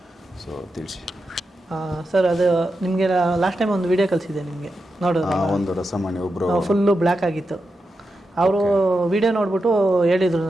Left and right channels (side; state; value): both; normal; correlation 0.88